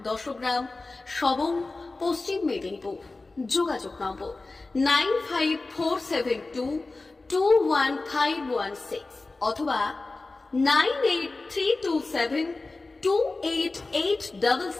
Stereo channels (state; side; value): quieter; right; 3.4 dB